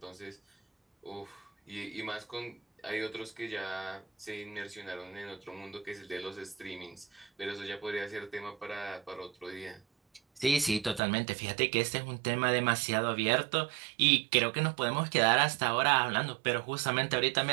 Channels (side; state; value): left; drops out; at 11.0 s